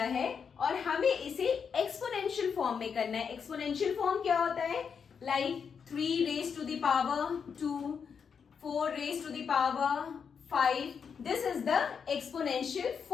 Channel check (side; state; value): right; quieter; 6.5 dB